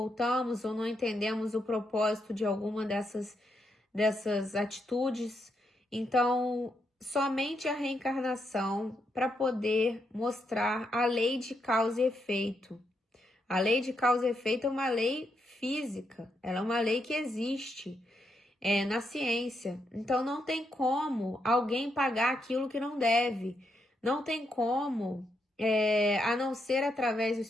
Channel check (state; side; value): normal; both; correlation 0.80